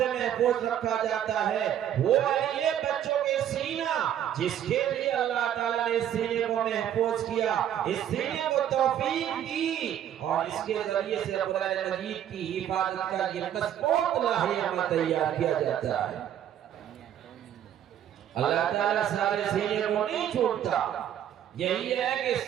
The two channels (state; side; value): quieter; left; 10.5 dB